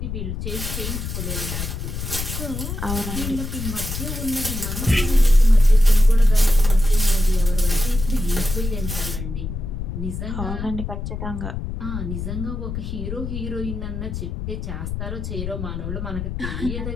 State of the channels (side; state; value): left; noise; rumble, 5 dB below the sound